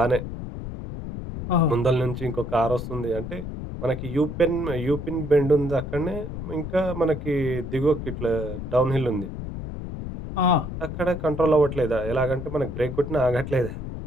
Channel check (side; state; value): left; noise; rumble, 7 dB below the sound